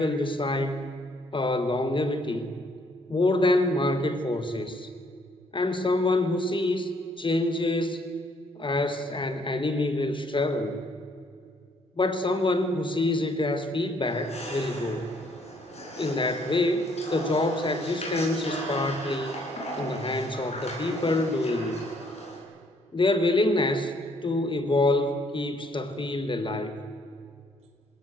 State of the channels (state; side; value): normal; both; correlation 0.66